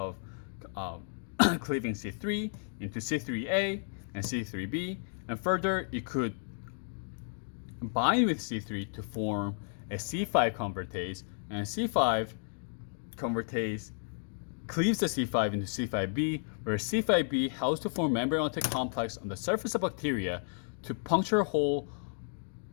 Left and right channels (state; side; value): silent; right; digital silence